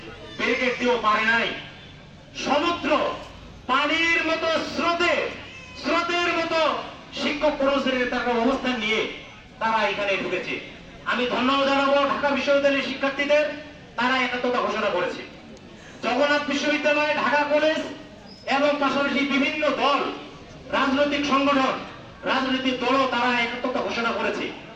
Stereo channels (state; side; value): identical; both; correlation 1.00